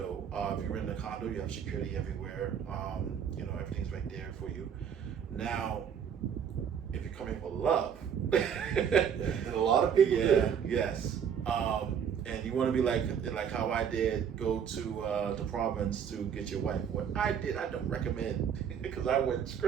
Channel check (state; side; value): quieter; left; 7.9 dB